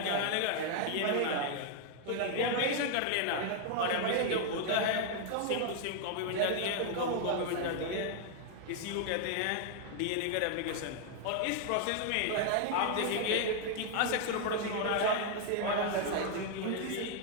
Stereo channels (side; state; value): both; different; correlation 0.00